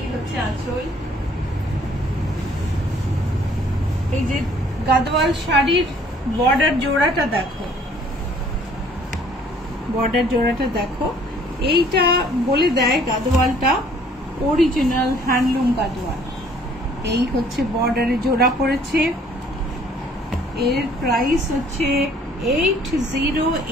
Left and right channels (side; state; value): both; normal; correlation 0.58